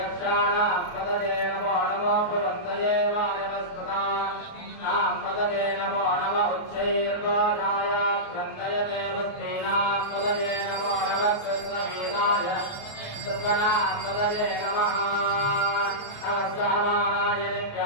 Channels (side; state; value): right; late; 28 ms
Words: पदये नमो नमो भवन्तये वायवस्पदानां पदये नमो नमः उच्चैर्घोषाय क्रन्दयते वस्तीनां पदये नमो नमः कृष्णवीराय सर्वनां पदये नमः नमस्काराय